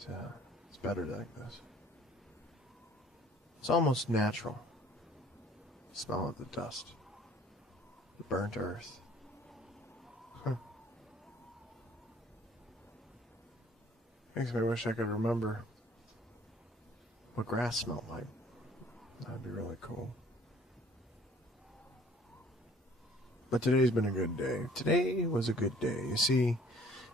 better like this. It's almost natural. The smell of the dust. The burnt earth. Makes me wish I could remember what grass smelled like. That'd be really cool. But today's been a good day. Today was a good day. You see,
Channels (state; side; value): normal; both; correlation 0.55